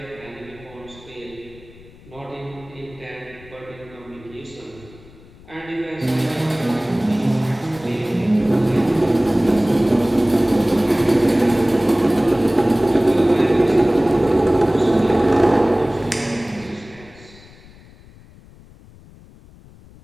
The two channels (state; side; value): noise; left; rumble, 23 dB below the sound